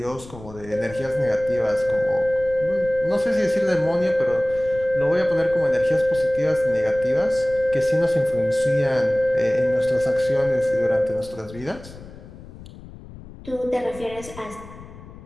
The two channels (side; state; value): left; noise; rumble, 17 dB below the sound